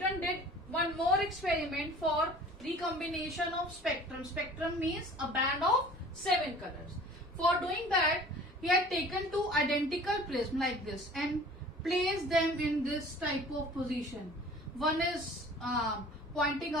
did one more experiment for recombination of spectrum. Spectrum means a band of 7 colors. For doing that, he had taken two identical prisms like this and placed them in this type of position. One is pointing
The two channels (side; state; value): both; normal; correlation 0.46